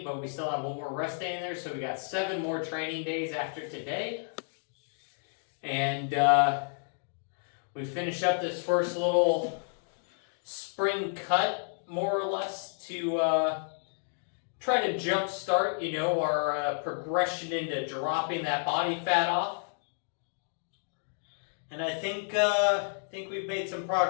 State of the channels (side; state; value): right; silent; digital silence